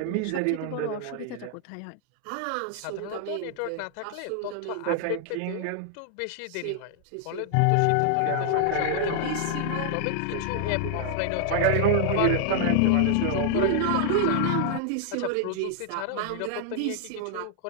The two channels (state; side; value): different; both; correlation 0.00